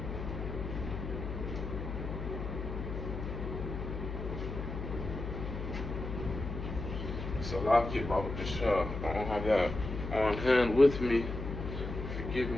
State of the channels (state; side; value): noise; left; hum, 6 dB below the sound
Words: Salakia, Baba Kasha. I don't have that on hand with me. Forgive